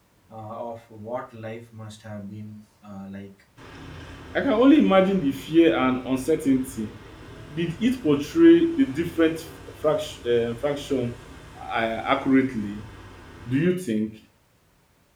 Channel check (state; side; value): identical; both; correlation 1.00